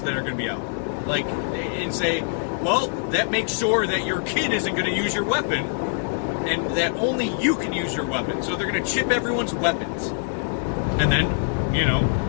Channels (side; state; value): right; silent; 56 dB below the other